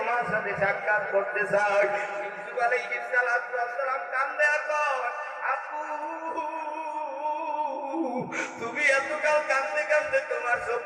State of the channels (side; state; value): both; identical; correlation 1.00